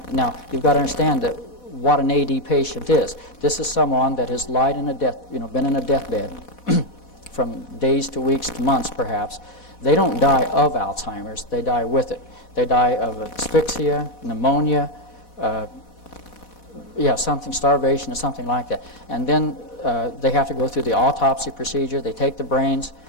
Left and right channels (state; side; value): late; right; 4.1 ms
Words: Now, you've got to understand that what an AD patient is. This is someone that has lied in been in a deathbed from days to weeks to months, perhaps. They don't die of Alzheimer's. They die with it. They die of asphyxia, pneumonia, starvation or something like that. And then they have to go through the autopsy procedure. They take the brains